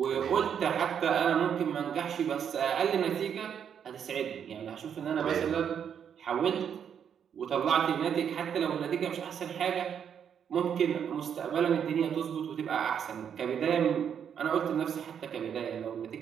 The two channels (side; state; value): left; quieter; 8.1 dB